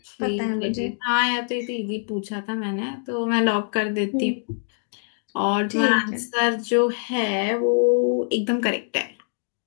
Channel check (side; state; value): right; silent; digital silence